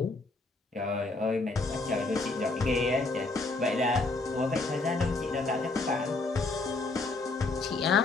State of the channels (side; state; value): right; quieter; 3.4 dB